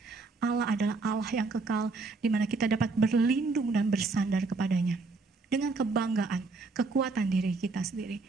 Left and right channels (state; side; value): quieter; left; 3.9 dB